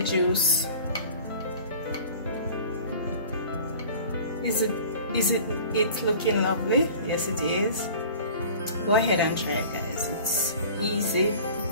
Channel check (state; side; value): inverted; both; correlation -0.43